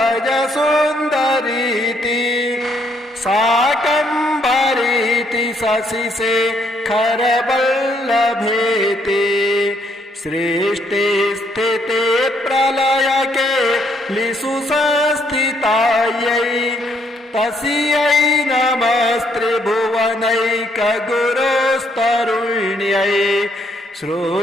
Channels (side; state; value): both; normal; correlation 0.71